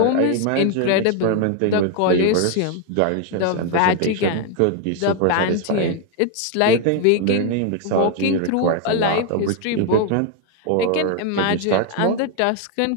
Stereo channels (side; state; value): both; different; correlation 0.01